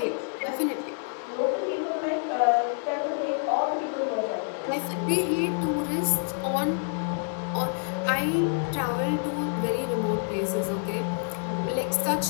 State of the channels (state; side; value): silent; right; 60 dB below the other